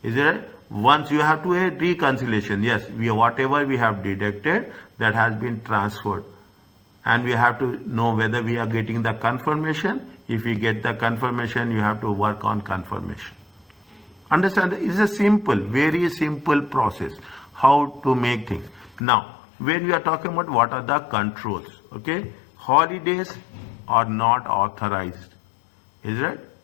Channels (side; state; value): right; drops out; at 19.0 s